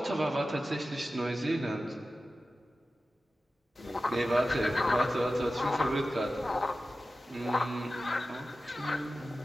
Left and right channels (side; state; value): both; normal; correlation 0.94